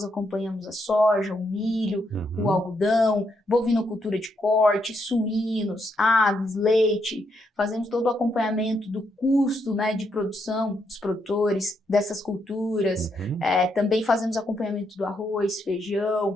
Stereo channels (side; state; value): both; normal; correlation 0.78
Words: acompanhamos a soja, o milho, o algodão, bovinocultura de corte, suínos, aves, leite. Fazemos todo o acompanhamento do custo, né, de produção dos produtores dessas culturas. Também fazemos acompanhamento do arroz,